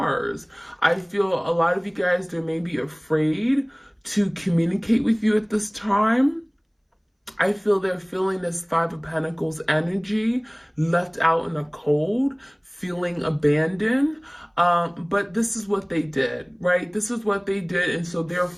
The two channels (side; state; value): both; identical; correlation 1.00